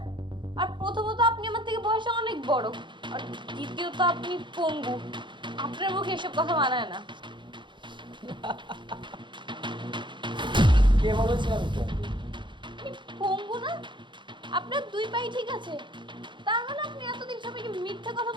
আর প্রথমত আপনি আমার থেকে বয়সে অনেক বড়, আর দ্বিতীয়ত আপনি পঙ্গু। আপনার মুখে এসব কথা মানায় না। কে বলেছে আমি পঙ্গু? আপনি পঙ্গু না? আপনার দুই পাই ঠিক আছে, তার মানে আপনি এতদিন সবাইকে মিথ্যা কথা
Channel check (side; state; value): left; late; 0.23 ms